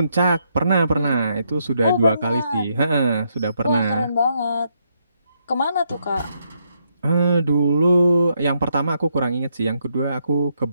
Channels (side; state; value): both; inverted; correlation -0.77